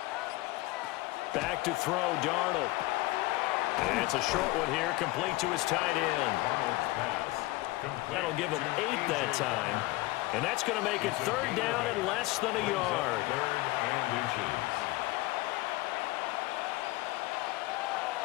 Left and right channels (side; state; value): right; quieter; 20.1 dB